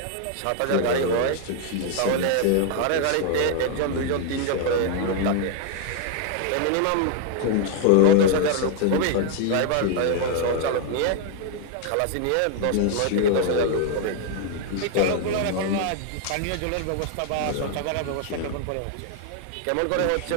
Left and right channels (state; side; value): different; both; correlation 0.00